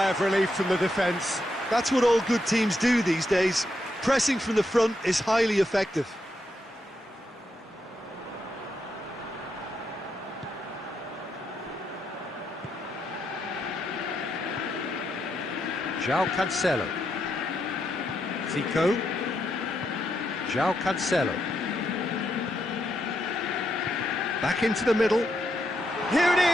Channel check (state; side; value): normal; both; correlation 0.81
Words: of relief from the defence. That's what all good teams do these days. Pressing from the front is highly effective. João Cancelo. Zico. João Cancelo. Back into the middle. Here it